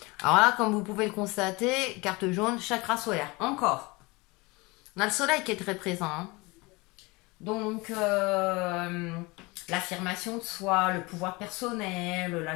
Alors là, comme vous pouvez le constater, carte jaune, chakra solaire. Encore. On a le soleil qui est très présent. Hein. Donc, l'affirmation de soi, le pouvoir personnel, la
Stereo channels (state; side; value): quieter; right; 24.8 dB